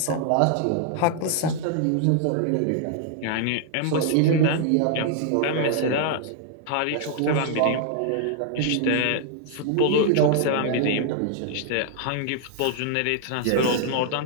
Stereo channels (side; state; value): both; different; correlation 0.00